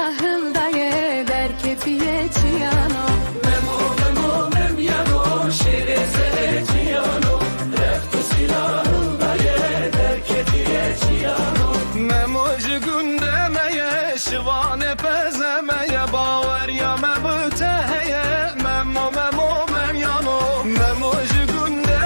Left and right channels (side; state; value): both; inverted; correlation -1.00